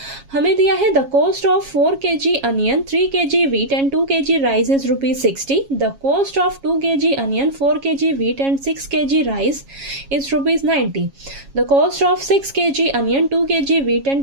हमें दिया है the cost of 4 kg onion, 3 kg wheat and 2 kg rice is ₹60। The cost of 2 kg onion, 4 kg wheat and 6 kg rice is ₹90। The cost of 6 kg onion, 2 kg wheat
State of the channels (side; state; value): left; late; 7.3 ms